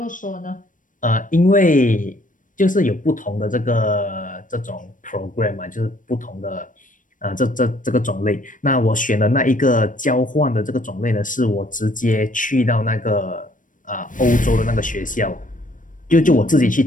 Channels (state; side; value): late; right; 0.38 ms